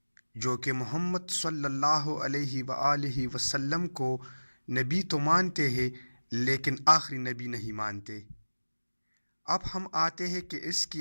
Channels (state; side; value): inverted; both; correlation -1.00